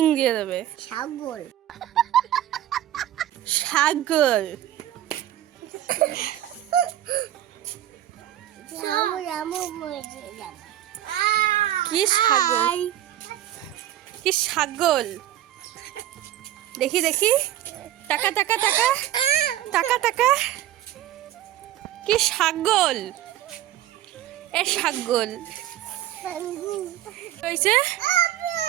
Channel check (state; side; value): quieter; left; 12.7 dB